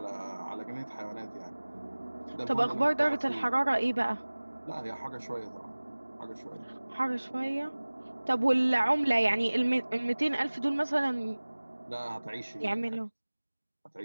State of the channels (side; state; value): both; inverted; correlation -1.00